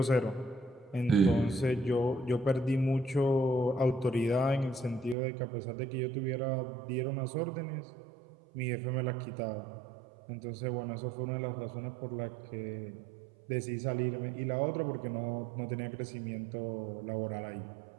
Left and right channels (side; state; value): left; drops out; at 5.2 s